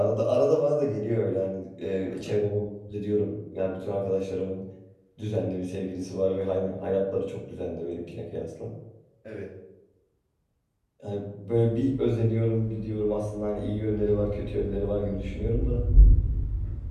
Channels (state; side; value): identical; both; correlation 1.00